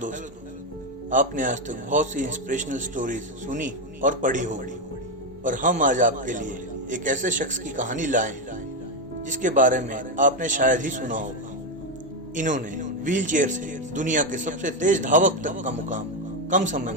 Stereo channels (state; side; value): normal; both; correlation 0.07